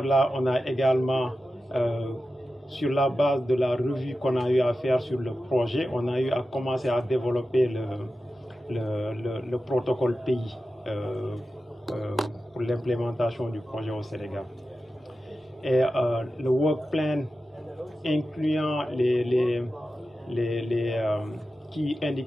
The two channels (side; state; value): both; normal; correlation 0.92